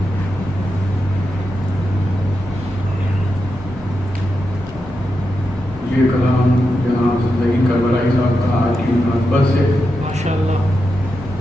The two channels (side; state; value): both; normal; correlation 0.87